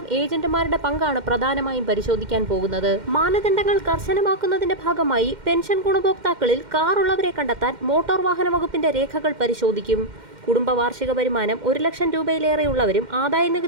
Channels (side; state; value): left; late; 2.1 ms